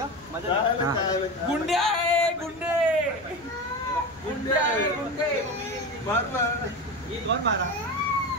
गुंडे ये कौन मारा?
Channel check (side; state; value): left; noise; rumble, 28 dB below the sound